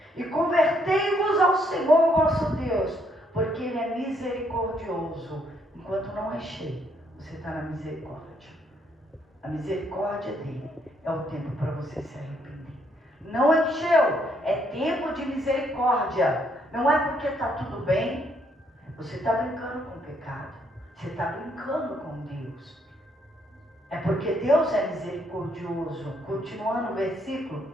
e convertei-vos ao Senhor vosso Deus, porque Ele é misericordioso. Enquanto não é cheio, você está na misericórdia. A misericórdia dele é o tempo para você se arrepender. Não encheu, tempo de misericórdia. Não é porque está tudo bem. Você está brincando com o pecado. Você está brincando com Deus. É porque Deus é misericordioso. Continuando o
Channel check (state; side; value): normal; both; correlation 0.71